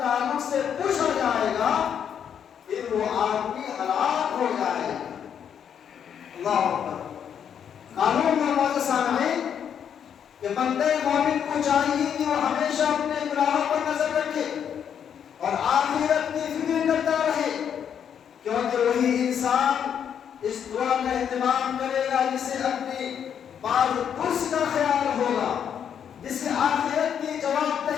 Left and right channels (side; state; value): right; quieter; 8.3 dB